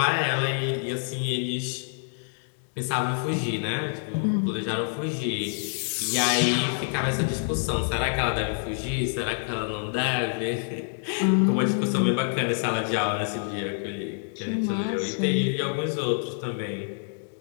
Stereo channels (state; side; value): silent; right; digital silence